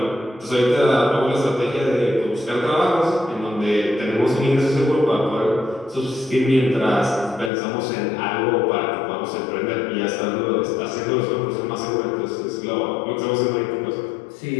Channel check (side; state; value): right; drops out; at 7.5 s